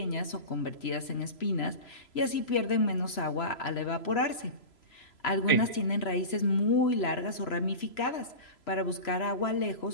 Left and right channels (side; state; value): right; late; 3.0 ms